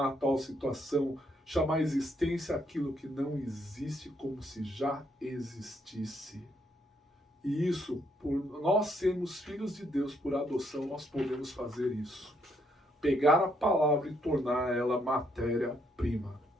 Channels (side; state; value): both; normal; correlation 0.73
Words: a tal situação, chamar a existência aquilo que não existe como se já existisse. E isso, por nós sermos filhos de Deus por adoção, nós podemos fazer isso. Pegar a palavra e tornar ela matéria-prima.